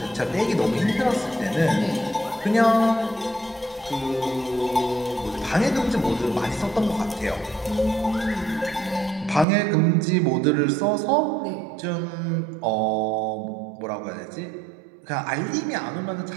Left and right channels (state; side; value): drops out; left; at 9.5 s